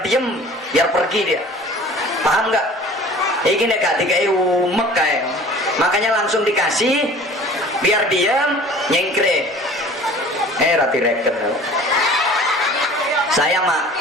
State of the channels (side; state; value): both; normal; correlation 0.45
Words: diem, biar pergi dia. Paham nggak? Ini nek dikai umek kayak, makanya langsung dikasih biar diam, nyengkre. Rati reken.